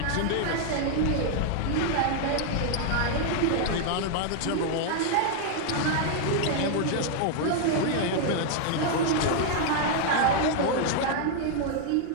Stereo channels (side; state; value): both; different; correlation 0.00